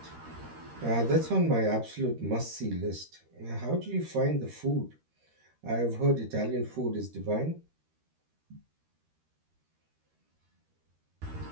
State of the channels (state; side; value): late; left; 13 ms